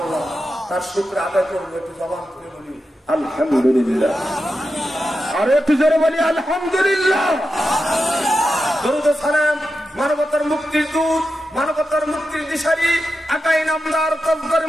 তার শুকরিয়া আদায় করবো। একটু জবান খুলে বলি আলহামদুলিল্লাহ, আর একটু জোরে বলি আলহামদুলিল্লাহ। দরুদ ও সালাম মানবতার মুক্তির দূত, মানবতার মুক্তির দিশারি, আকাই নামদার কব্বর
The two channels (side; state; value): both; normal; correlation 0.89